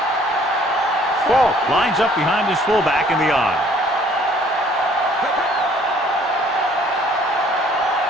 Ball lines up behind his fullback in the I.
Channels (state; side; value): normal; both; correlation 0.58